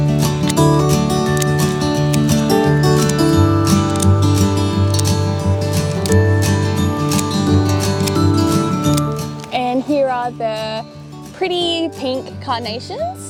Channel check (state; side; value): identical; both; correlation 1.00